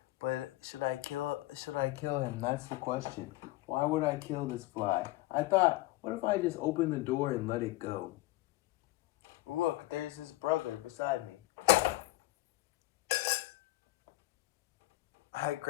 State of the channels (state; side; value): quieter; right; 18.7 dB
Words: But should I kill him? That's the question. Why would I kill this fly? I thought, what if I just open the door and let it go? Look, there's his brother beside me. I